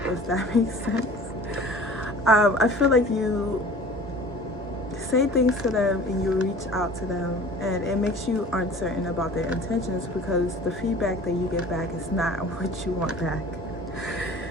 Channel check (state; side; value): normal; both; correlation 0.44